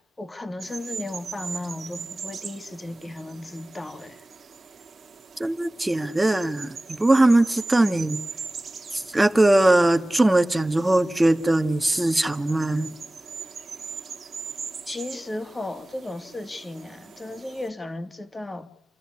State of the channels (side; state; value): both; normal; correlation 0.98